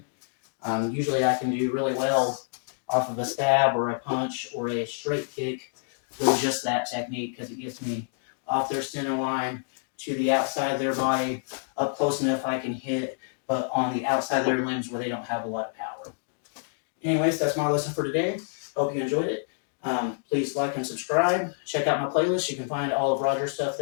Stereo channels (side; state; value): right; silent; digital silence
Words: Usually I can do really well off of a stab or a punch or a straight kick with just that technique, because it gets me off their center line to the outside of their body, up close enough I can hit, but on the outside of their limbs where they don't have a lot of power. Anyways, that's my lesson for today. Hope you enjoyed it. Please like and subscribe. Check out my playlist. You can find all of Roger's stuff